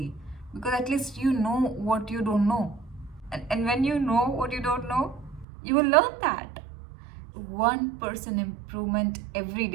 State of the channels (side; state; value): left; drops out; at 5.5 s